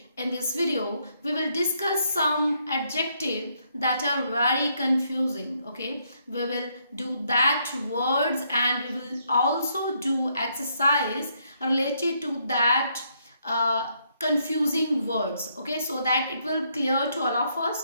in this video, we will discuss some adjectives that are very confusing. Okay, we will do that words and we will also do exercise related to that confusing words, okay, so that it will clear to all of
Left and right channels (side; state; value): both; inverted; correlation -0.73